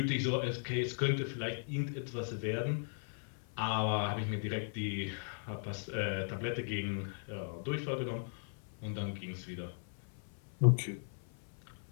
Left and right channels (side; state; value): right; silent; 53 dB below the other